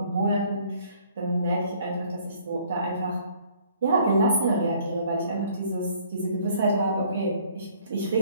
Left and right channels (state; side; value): inverted; both; correlation -0.59